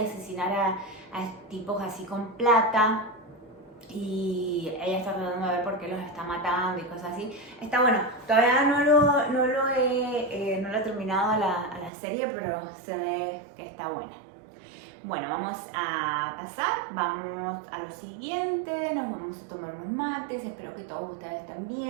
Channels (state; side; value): drops out; left; at 11.9 s